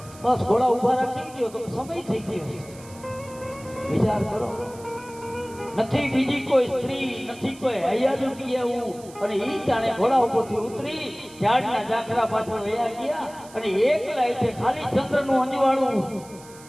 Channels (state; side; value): noise; right; hiss, 21 dB below the sound